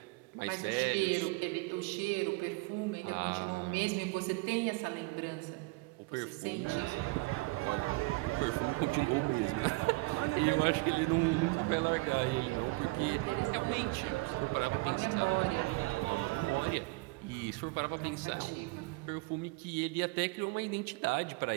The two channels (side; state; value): left; quieter; 24.9 dB